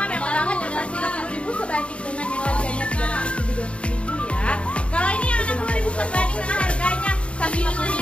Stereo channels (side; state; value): right; late; 0.060 ms